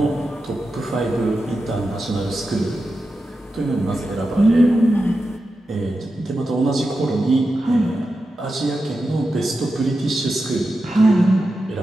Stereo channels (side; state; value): both; normal; correlation 0.90